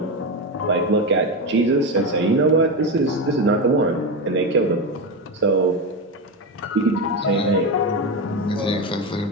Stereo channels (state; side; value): normal; both; correlation 0.15